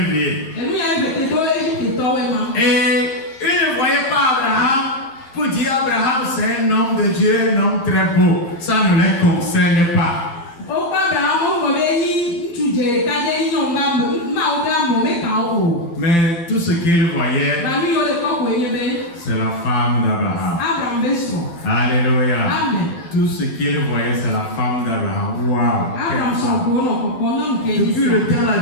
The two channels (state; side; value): late; right; 12 ms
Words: Et ils ne voyaient pas Abraham pour dire Abraham c'est un homme de Dieu, un homme très beau. Ça ne les concerne pas. Mais tout ce qu'ils voyaient, c'est la femme d'Abraham. Alléluia. Tout ce qu'ils voyaient, c'est la femme d'Abraham. Waouh. Depuis le temps, là,